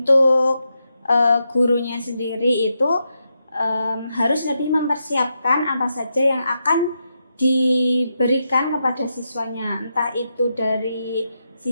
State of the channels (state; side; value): inverted; both; correlation -0.85